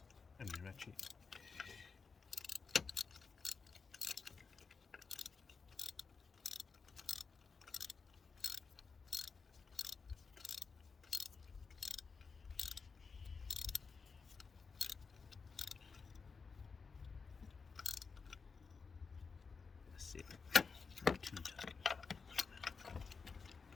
and the ratchet. That's it. Not too tight.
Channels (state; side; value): quieter; right; 5.1 dB